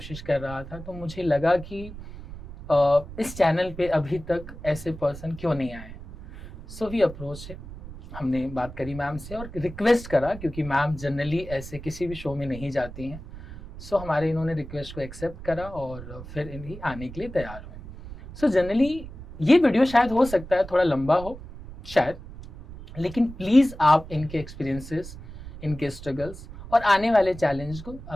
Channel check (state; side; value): noise; right; rumble, 14 dB below the sound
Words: कर रहा था तो मुझे लगा कि इस चैनल पे अभी तक ऐसे पर्सन क्यों नहीं आए। सो वी अप्रोच है, हमने बात करी मैम से और रिक्वेस्ट करा, क्योंकि मैम जनरली ऐसे किसी भी शो में नहीं जाती हैं। सो हमारे इन्होंने रिक्वेस्ट को एक्सेप्ट करा और फिर इन्हीं आने के लिए तैयार हुए। सो जनरली ये वीडियो शायद हो सकता है थोड़ा लंबा हो शायद, लेकिन प्लीज़ आप इनके एक्सपीरियंसेस, इनके स्ट्रगल्स और आने वाले